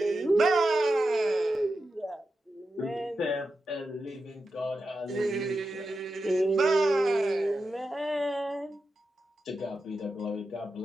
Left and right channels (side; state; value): both; normal; correlation 0.90